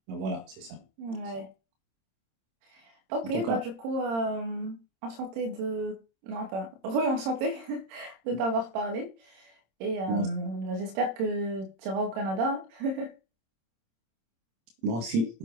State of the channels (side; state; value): left; late; 26 ms